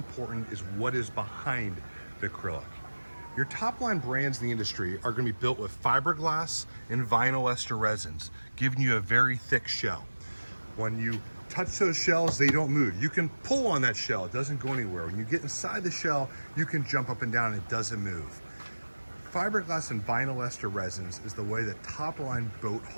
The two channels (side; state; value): both; inverted; correlation -1.00